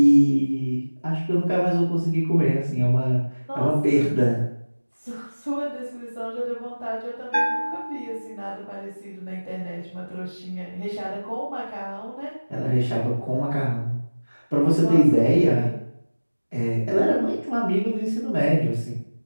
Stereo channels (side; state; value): both; inverted; correlation -1.00